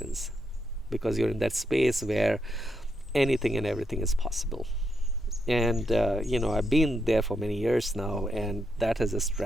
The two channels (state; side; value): normal; both; correlation 0.81